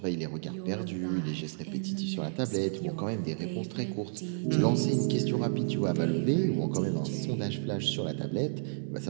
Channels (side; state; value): left; silent; digital silence